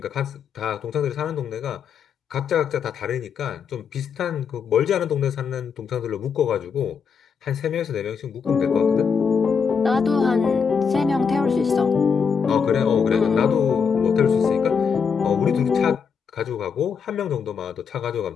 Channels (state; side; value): quieter; right; 6.3 dB